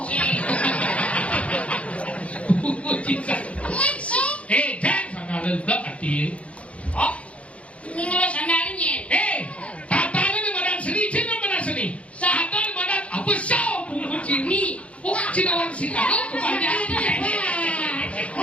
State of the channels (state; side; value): late; right; 0.063 ms